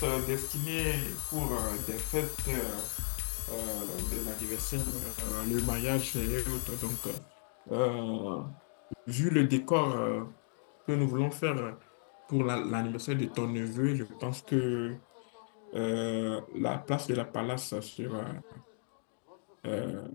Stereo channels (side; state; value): right; silent; digital silence